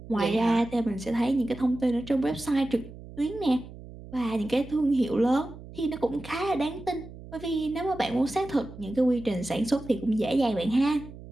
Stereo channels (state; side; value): noise; right; hum, 15 dB below the sound